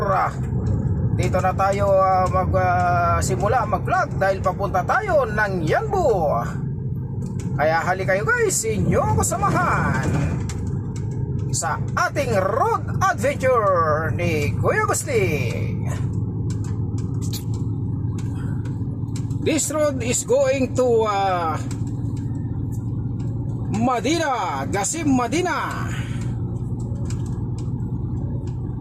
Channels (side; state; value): both; identical; correlation 1.00